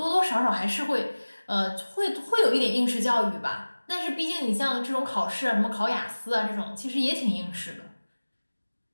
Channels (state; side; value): inverted; both; correlation -1.00